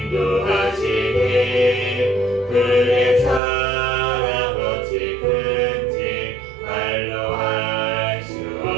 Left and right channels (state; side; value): drops out; left; at 3.4 s